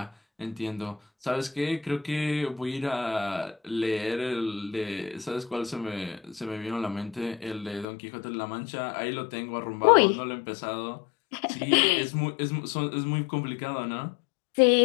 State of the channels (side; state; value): right; drops out; at 7.9 s